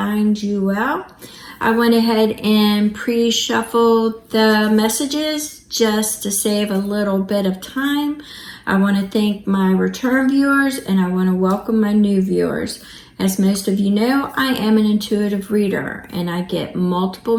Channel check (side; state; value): both; identical; correlation 1.00